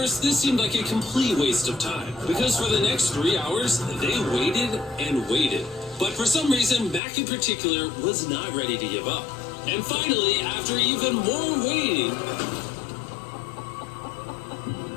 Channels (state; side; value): drops out; right; at 7.0 s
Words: this seemed like a complete waste of time. Because for the next 3 hours, they waited and waited. But for some reason, Mac in particular was not ready to give up. And finally, after even more waiting,